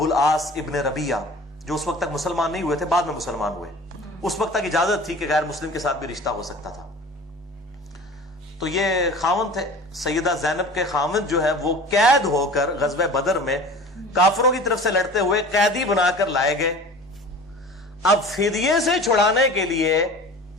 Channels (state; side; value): normal; both; correlation 0.40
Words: العاص ابن ربیعہ، جو اس وقت تک مسلمان نہیں ہوئے تھے، بعد میں مسلمان ہوئے، اس وقت تک اجازت تھی کہ غیر مسلم کے ساتھ بھی رشتہ ہو سکتا تھا. تو یہ خاوند تھے، سیدہ زینب کے خاوند جو ہے وہ قید ہو کر غزوہ بدر میں کافروں کی طرف سے لڑتے ہوئے قیدی بنا کر لائے گئے. اب فدیے سے چھڑانے کے لیے